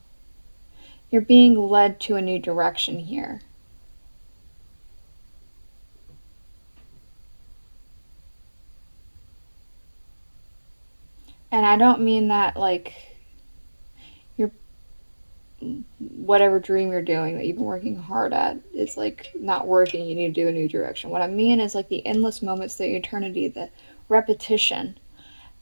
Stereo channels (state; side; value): inverted; both; correlation -1.00